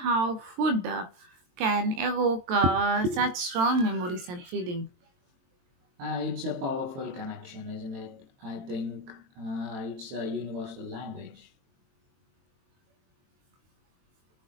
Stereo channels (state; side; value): late; left; 22 ms